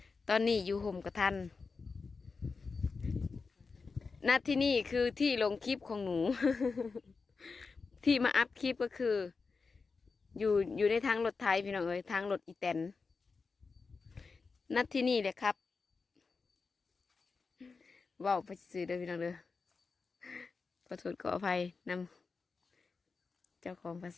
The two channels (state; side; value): quieter; right; 4.6 dB